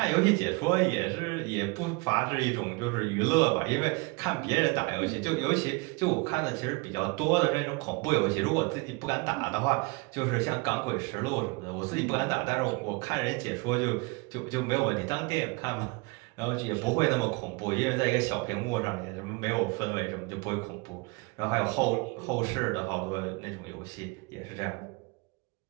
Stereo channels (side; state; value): left; quieter; 28.0 dB